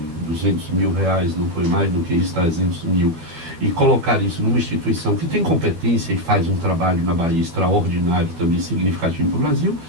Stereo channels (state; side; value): late; left; 12 ms